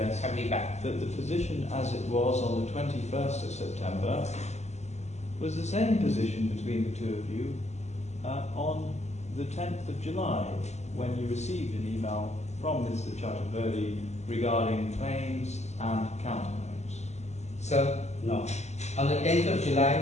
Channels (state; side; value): late; right; 0.33 ms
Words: have me back. that the position as it was on the 21st of September was the same position between the two of you on the 10th of July, when you received an email from Mr. Chaturvedi regarding claims and counterclaims? Sir, no. On the 10th of July,